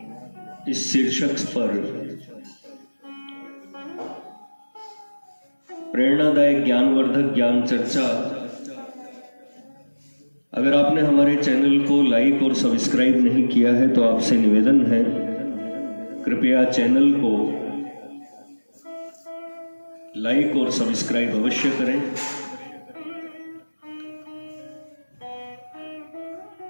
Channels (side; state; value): both; inverted; correlation -1.00